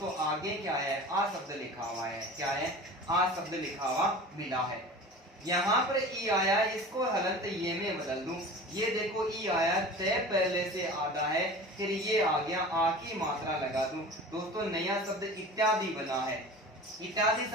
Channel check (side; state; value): both; normal; correlation 0.37